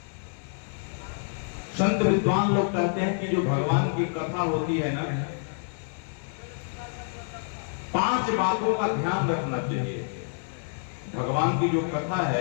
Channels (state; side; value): silent; right; digital silence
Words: संत विद्वान लोग कहते हैं कि जो भगवान की कथा होती है ना, 5 बातों का ध्यान रखना चाहिए। भगवान की जो कथा